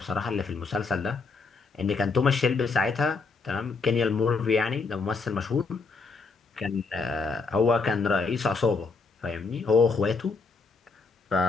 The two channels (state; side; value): quieter; right; 4.4 dB